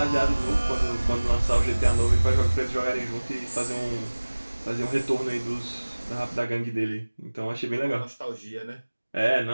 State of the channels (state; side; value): inverted; both; correlation -1.00